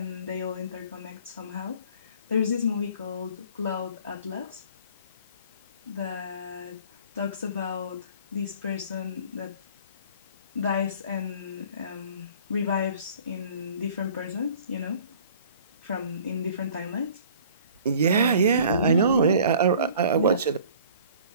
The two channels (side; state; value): both; inverted; correlation -0.50